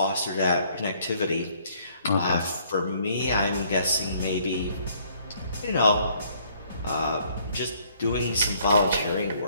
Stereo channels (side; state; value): both; inverted; correlation -0.64